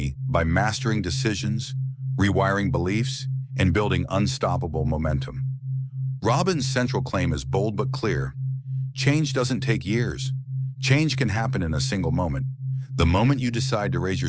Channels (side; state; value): both; identical; correlation 1.00